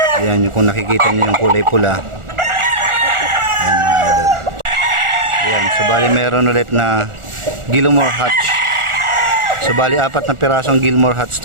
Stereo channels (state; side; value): late; left; 1.4 ms